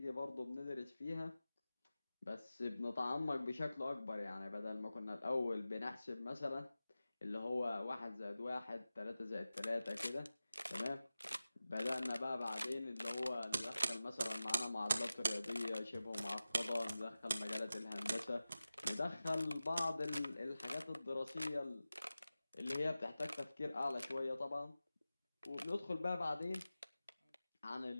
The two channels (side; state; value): both; inverted; correlation -0.95